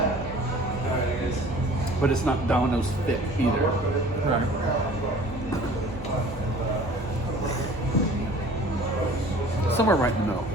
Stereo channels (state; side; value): normal; both; correlation 0.48